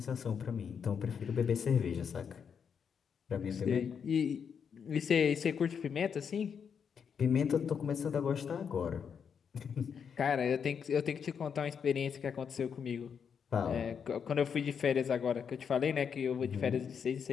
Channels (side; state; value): right; quieter; 7.0 dB